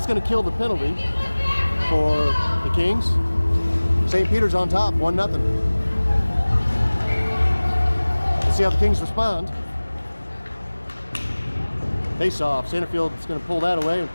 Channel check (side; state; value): both; inverted; correlation -1.00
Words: going to kill the penalty for the Kings. St. Peter's on top, 1-0. Let's see how the Kings respond. Face off. Sanderfield's going to pull that away and